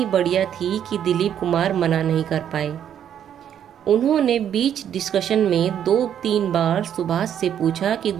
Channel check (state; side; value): quieter; left; 9.5 dB